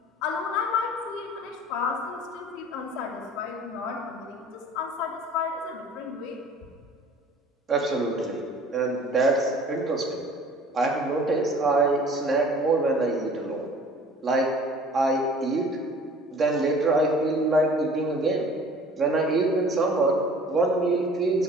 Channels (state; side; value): normal; both; correlation 0.49